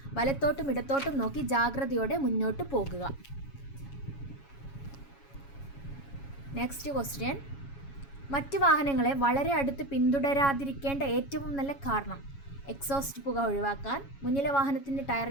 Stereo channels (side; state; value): right; late; 7.2 ms